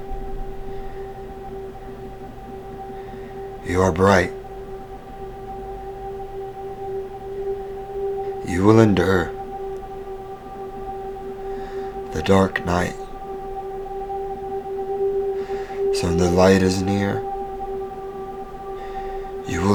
You are bright. You will endure the dark night. So when the light is near, you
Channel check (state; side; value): identical; both; correlation 1.00